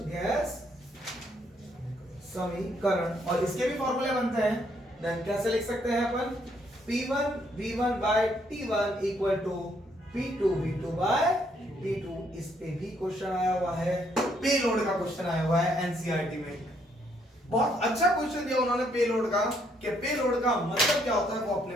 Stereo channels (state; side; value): normal; both; correlation 0.70